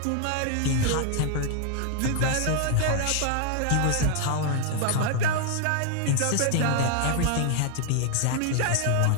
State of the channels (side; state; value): both; different; correlation 0.00